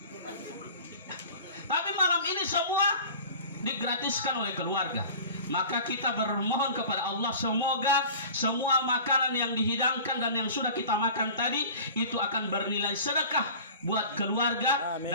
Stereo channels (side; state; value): both; inverted; correlation -0.40